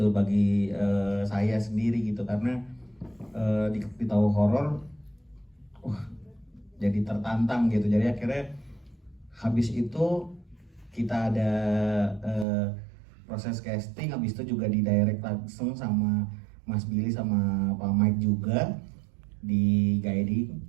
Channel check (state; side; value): drops out; left; at 12.5 s